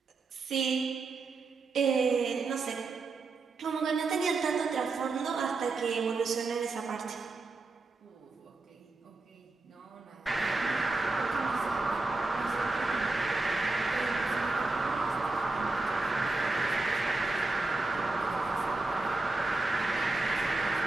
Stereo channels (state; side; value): quieter; left; 3.5 dB